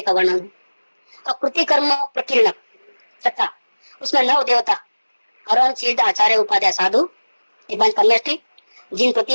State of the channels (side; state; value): both; inverted; correlation -1.00